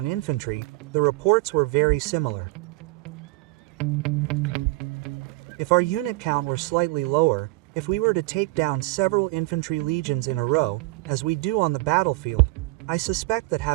infantry, the reports were very similar. If our unit count were slightly lower, if we were to take down several infantry legions in a row, as we do on the battlefield, I suspect that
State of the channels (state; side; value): quieter; left; 21.2 dB